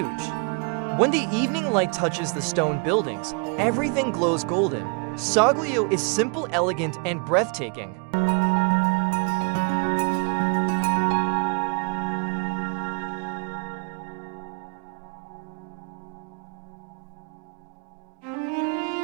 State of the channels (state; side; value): quieter; left; 34.4 dB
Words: When the evening light touches the stone buildings, everything glows golden. Soglio is simple, elegant, and breathtaking.